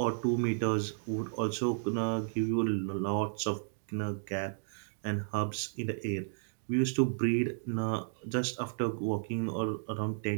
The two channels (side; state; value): left; silent; digital silence